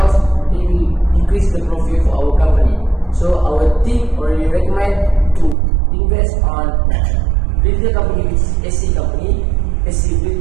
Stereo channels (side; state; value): left; drops out; at 5.6 s